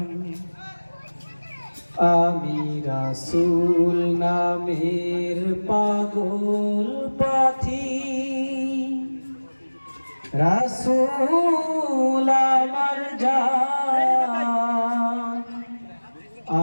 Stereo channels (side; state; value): both; inverted; correlation -1.00